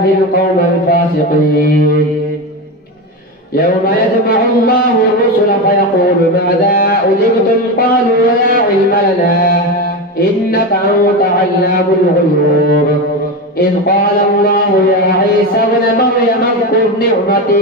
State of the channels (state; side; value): normal; both; correlation 0.18